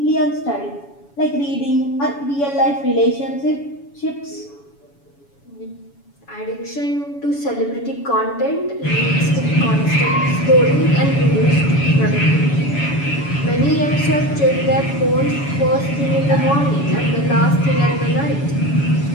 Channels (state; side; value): late; right; 7.1 ms